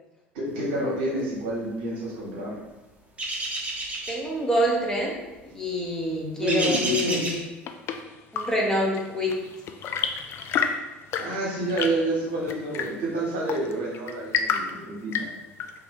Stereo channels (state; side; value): normal; both; correlation 0.39